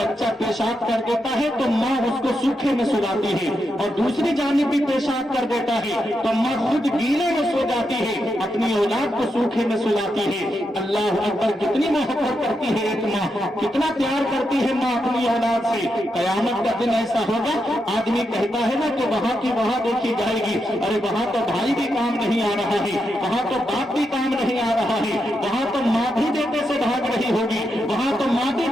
پیشاب کر دیتا ہے تو ماں اس کو سوکھے میں سلاتی ہے، اور دوسری جانب بھی پیشاب کر دیتا ہے تو ماں خود گیلے میں سو جاتی ہے، اپنی اولاد کو سوکھے میں سلاتی ہے۔ اللہ اکبر، کتنی محبت کرتی ہے ایک ماں، کتنا پیار کرتی ہے ماں اپنی اولاد سے۔ قیامت کا دن ایسا ہوگا، آدمی کہتا ہے نا کہ وہاں کی وہاں دیکھی جائے گی، ارے وہاں تو بھائی بھی کام نہیں آ رہا ہے، وہاں تو باپ بھی کام نہیں آ رہا ہے، وہاں تو ماں بھی بیٹے سے بھاگ رہی ہوگی، وہاں تو ماں بھی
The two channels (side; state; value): both; normal; correlation 0.84